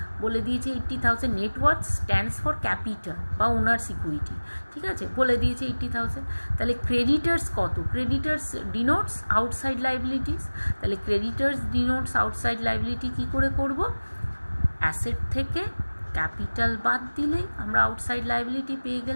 বলে দিয়েছে 80,000। Net worth stands for capital বা ওনার্স ইকুইটি। ঠিক আছে, বলে দিয়েছে 80,000। তাহলে ক্রেডিটার্স কত, ক্রেডিটার্স ডিনোটস আউটসাইড লাইবিলিটিস। তাহলে ক্রেডিটার্স ডিনোটস আউটসাইড লাইবিলিটি কী করে করব, অ্যাসেট থেকে ক্যাপিটাল বাদ দিলেই আমরা আউটসাইড লাইবিলিটি পেয়ে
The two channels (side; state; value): both; inverted; correlation -1.00